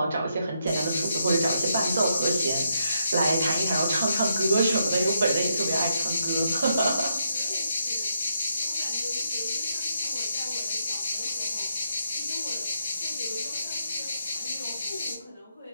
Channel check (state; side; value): inverted; both; correlation -0.79